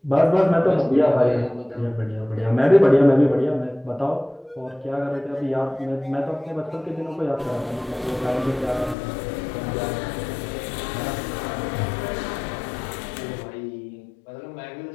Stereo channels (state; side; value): drops out; right; at 9.0 s